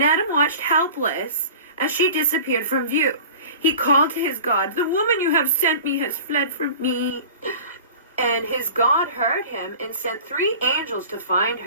Adam watched helpless as she disappeared from view. He called to his God, the woman you have sent me has fled from me, And his God heard him and sent 3 angels to find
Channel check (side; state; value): both; inverted; correlation -0.40